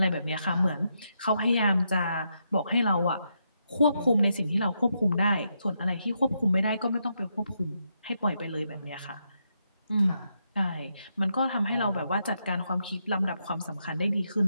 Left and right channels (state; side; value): inverted; both; correlation -0.81